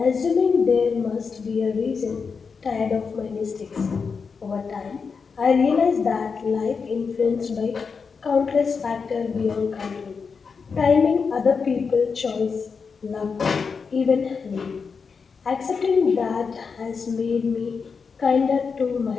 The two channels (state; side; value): quieter; right; 5.4 dB